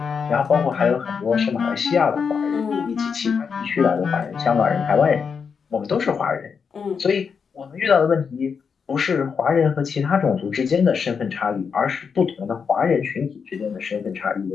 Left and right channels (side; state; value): right; quieter; 6.1 dB